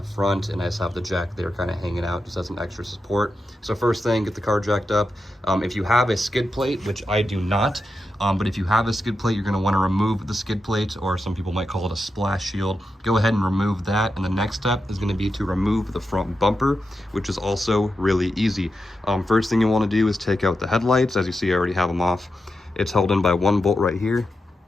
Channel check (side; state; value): both; normal; correlation 0.88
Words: front, and I just have the jack there kind of hanging out just as an extra support. So first thing, get the car jacked up. If you have a skid plate, which I do not, but if you have a skid plate, you're going to want to remove the skid plate, or some people might call it a splash shield. Go ahead and remove that, and the next step is going to be to remove the front bumper, which is also really easy. First thing you want to do is take out the headlights. As you see, I already have them off. It's held in by one bolt right here